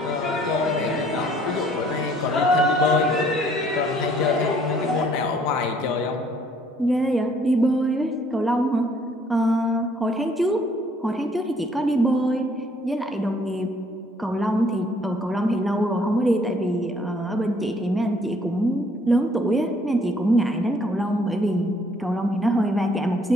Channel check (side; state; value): both; normal; correlation 0.63